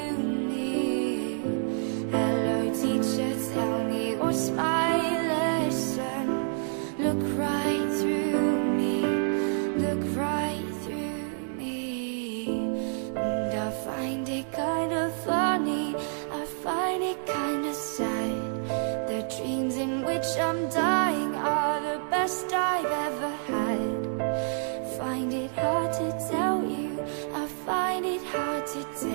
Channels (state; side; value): silent; left; 59 dB below the other